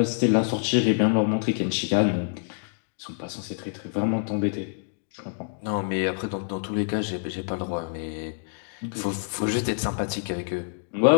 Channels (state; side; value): silent; right; digital silence